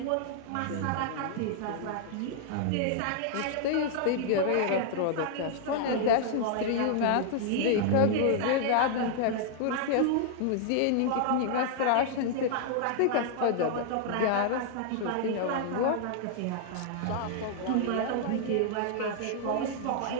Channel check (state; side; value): different; both; correlation -0.01